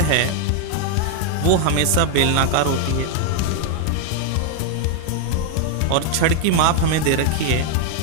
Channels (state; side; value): different; both; correlation 0.00